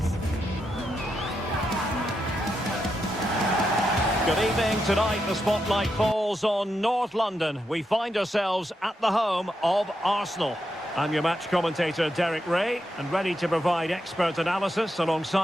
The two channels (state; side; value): normal; both; correlation 0.84